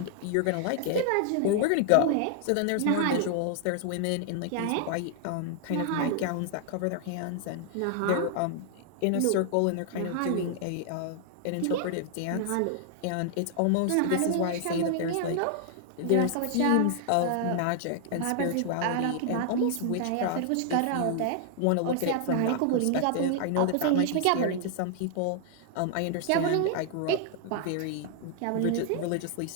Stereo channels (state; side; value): different; both; correlation 0.00